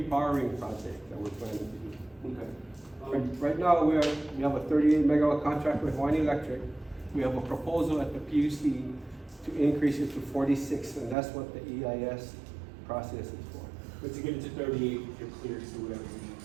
project that we're planning to do. Okay. Right now, we have a 38 megawatt contract with Hawaiian Electric. We have a proposal at the PUC to increase it to 46, and that's what the EIS process is for. But to get it to 38, you're clear to do whatever you need.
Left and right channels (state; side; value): drops out; left; at 11.2 s